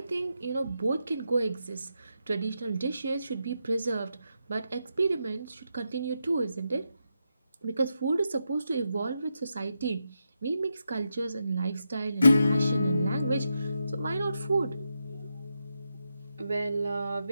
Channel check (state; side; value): inverted; both; correlation -0.85